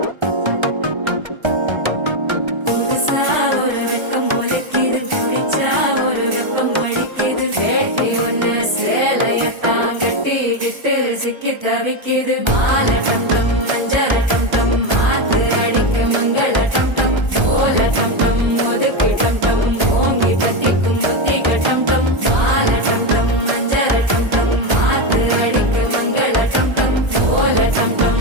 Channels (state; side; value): late; left; 1.3 ms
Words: புதுசா ஒரு வெப்பம் ஒழிக்குது குடிச்சா ஒரு வெப்பம் ஒழிக்குது வேட்டி ஒண்ணு சேலையத்தான் கட்டிக்கிட்டு சிக்கி தவிக்குது மாலை டம் டம் மஞ்சள டம் டம் மாத்து அடிக்க மங்கள டம் டம் ஓல டம் டம் ஒதுக்கு டம் டம் ஓங்கி தட்டிக்கும் புத்திக டம் டம் மாலை டம் டம் மஞ்சள டம் டம் மாத்து அடிக்க மங்கள டம் டம் ஓல டம் டம்